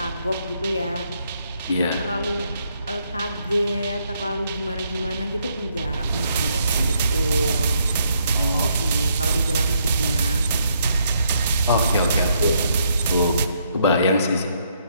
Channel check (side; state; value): both; inverted; correlation -0.73